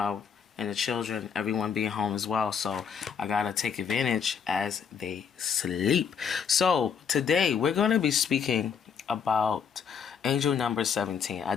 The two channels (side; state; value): right; quieter; 6.9 dB